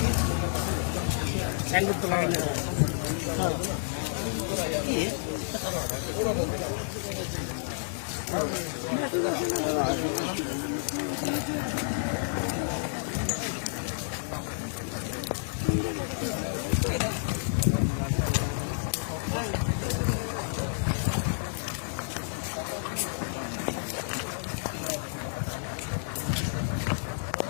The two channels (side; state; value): right; silent; digital silence